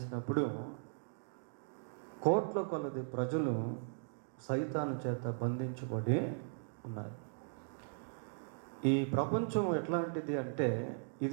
కోట్ల కొలది ప్రజలు సైతాను చేత బంధించబడి ఉన్నారు. ఈ ప్రపంచం ఎట్లాంటిది అంటే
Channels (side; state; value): left; silent; digital silence